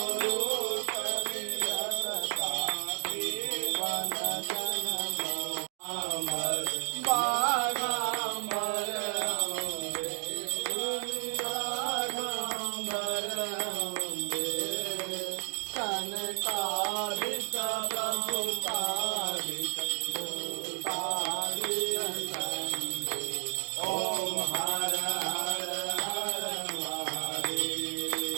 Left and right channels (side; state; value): left; silent; digital silence